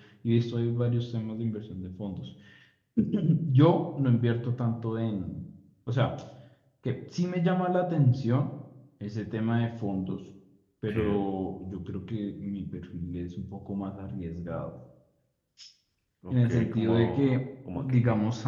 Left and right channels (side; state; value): both; identical; correlation 1.00